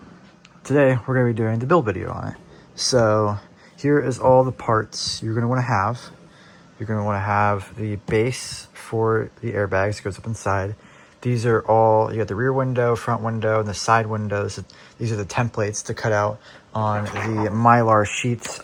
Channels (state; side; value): identical; both; correlation 1.00